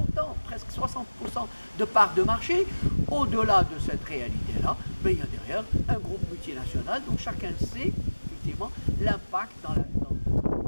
presque 60% de parts de marché, au-delà de cette réalité-là, ben, il y a derrière un groupe multinational dont chacun sait effectivement l'impact non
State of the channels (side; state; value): both; inverted; correlation -1.00